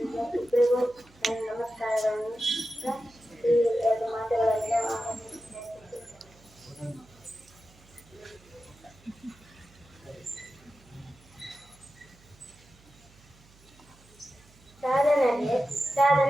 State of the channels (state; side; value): noise; right; hum, 26 dB below the sound